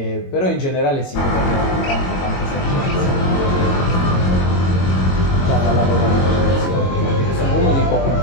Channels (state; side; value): late; right; 22 ms